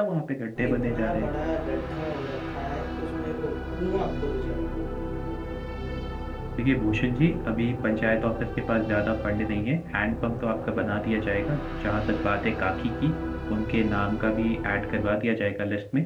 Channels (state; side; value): identical; both; correlation 1.00